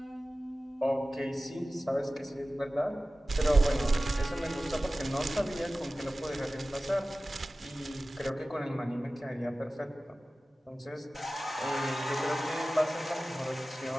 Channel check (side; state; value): both; normal; correlation 0.96